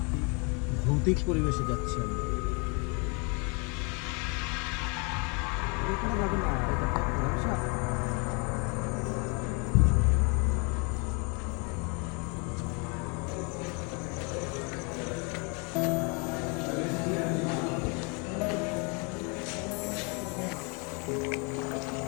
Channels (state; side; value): quieter; right; 33.3 dB